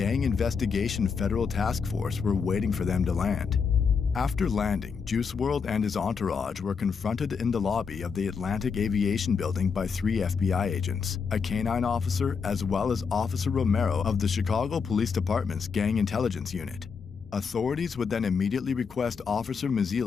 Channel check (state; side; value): quieter; right; 5.8 dB